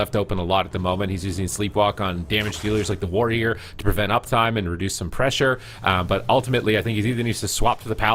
open a lot at the moment. He's using Sleepwalk on damage dealers like the Warrior to prevent uptime and reduce some pressure. But ultimately, I think he either needs to swap to the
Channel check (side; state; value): both; identical; correlation 1.00